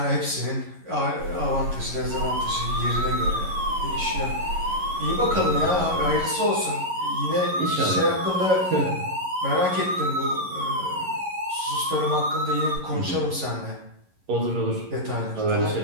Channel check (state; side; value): late; left; 11 ms